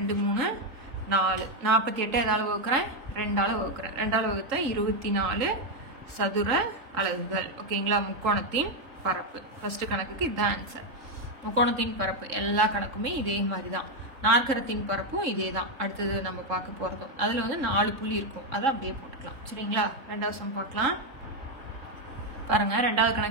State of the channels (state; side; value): late; left; 3.8 ms